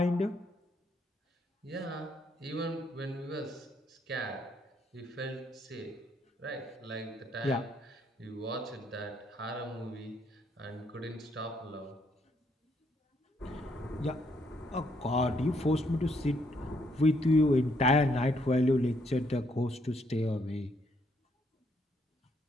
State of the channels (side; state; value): both; normal; correlation 0.72